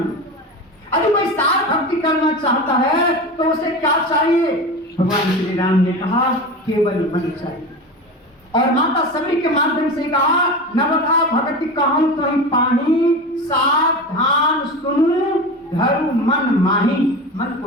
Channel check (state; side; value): normal; both; correlation 0.27